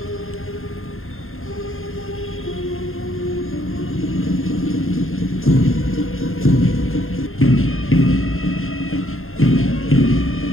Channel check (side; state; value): right; late; 0.61 ms